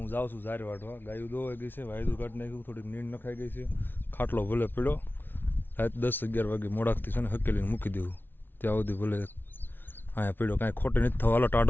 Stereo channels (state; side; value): late; right; 0.099 ms